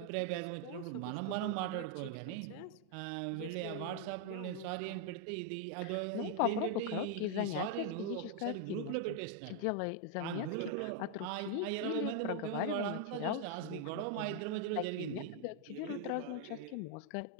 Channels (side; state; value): both; different; correlation 0.00